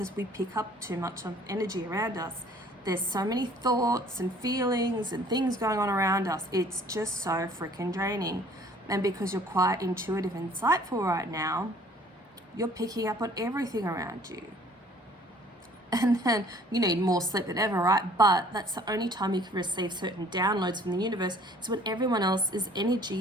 we pick up too much of energy around us. There's so many thoughts and feelings and things going on around us. It's just so freaking draining. And because you're quite intuitive and insightful right now, you're picking up on everything around you. And then you need more sleep than ever, right? But that's the only time you can receive certain downloads from the universe, is when everyone else's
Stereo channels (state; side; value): normal; both; correlation 0.55